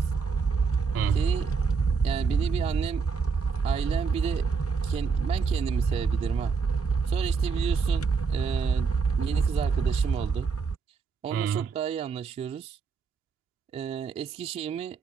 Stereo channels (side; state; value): left; quieter; 5.3 dB